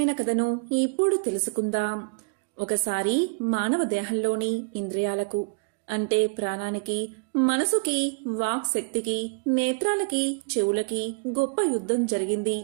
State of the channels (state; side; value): quieter; left; 32.8 dB